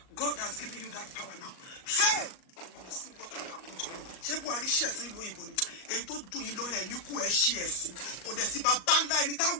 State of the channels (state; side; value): late; right; 38 ms